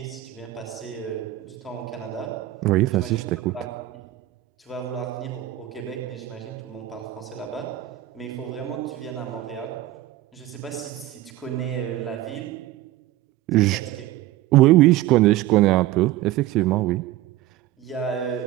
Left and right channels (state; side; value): quieter; left; 14.9 dB